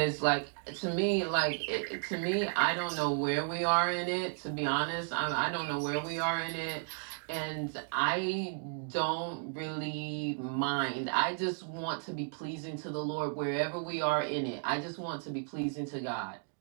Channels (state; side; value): silent; left; 55 dB below the other